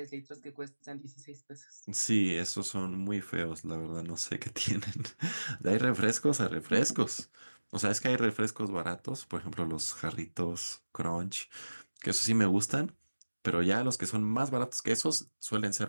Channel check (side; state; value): both; inverted; correlation -1.00